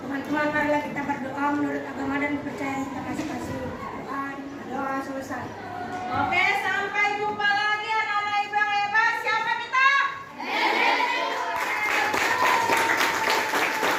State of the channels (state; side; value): identical; both; correlation 1.00